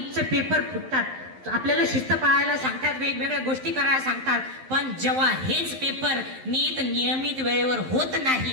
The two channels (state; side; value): late; left; 11 ms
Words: पेपर फुटतात आपल्याला शिस्त पाळायला सांगतात, वेगवेगळ्या गोष्टी करायला सांगतात. पण जेव्हा हेच पेपर नियमित वेळेवर होत